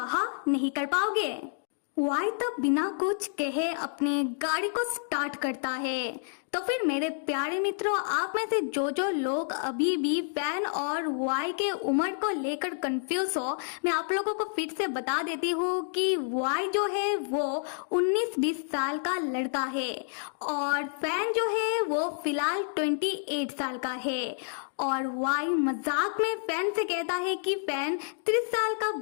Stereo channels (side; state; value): right; silent; digital silence